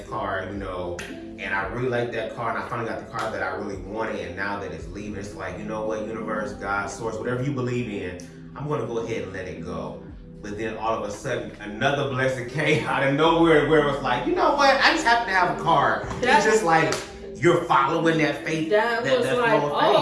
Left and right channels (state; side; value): identical; both; correlation 1.00